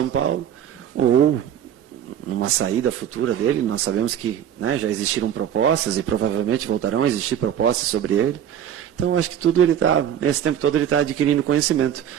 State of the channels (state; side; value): quieter; left; 9.8 dB